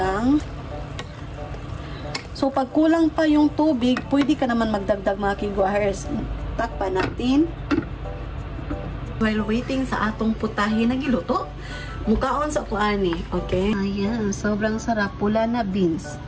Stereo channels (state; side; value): identical; both; correlation 1.00